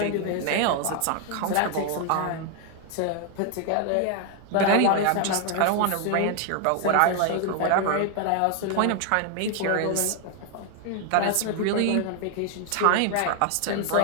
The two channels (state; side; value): different; both; correlation 0.00